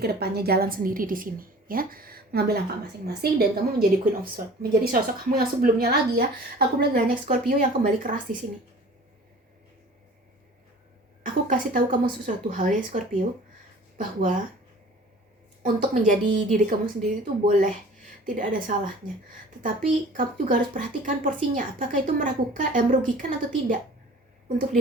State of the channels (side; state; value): both; normal; correlation 0.46